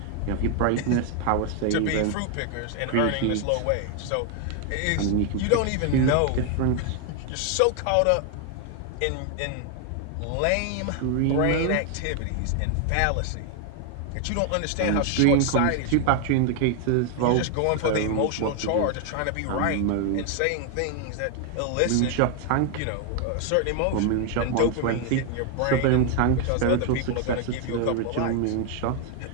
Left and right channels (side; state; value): both; different; correlation 0.00